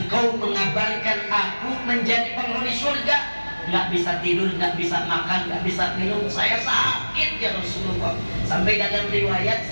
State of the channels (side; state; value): both; inverted; correlation -1.00